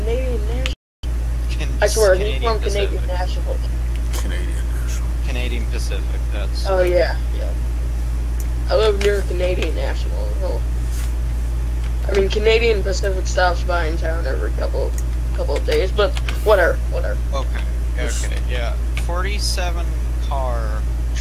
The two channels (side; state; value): both; identical; correlation 1.00